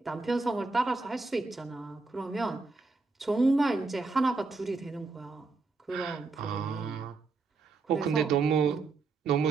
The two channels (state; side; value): quieter; left; 4.0 dB